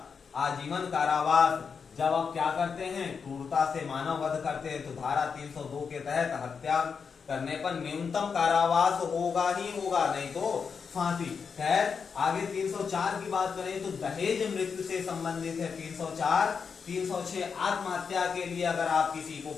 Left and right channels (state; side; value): quieter; right; 5.9 dB